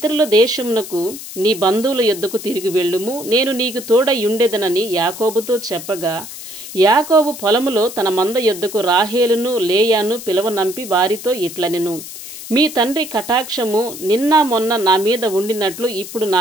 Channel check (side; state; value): left; noise; hiss, 12 dB below the sound